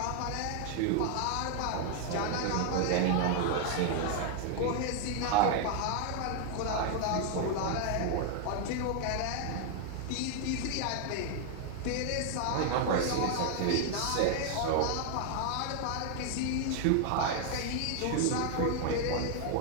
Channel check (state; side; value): different; both; correlation 0.00